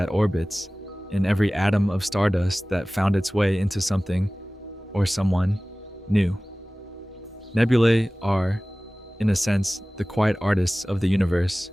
orbits, in every atom of stardust that found its way into something or someone new. Nebulae are, in a sense, the quiet artists of the universe.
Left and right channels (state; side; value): normal; both; correlation 0.98